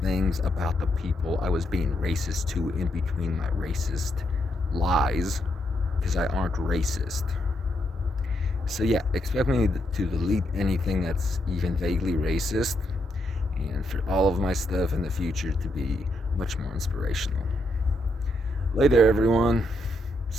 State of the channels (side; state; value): both; normal; correlation 0.79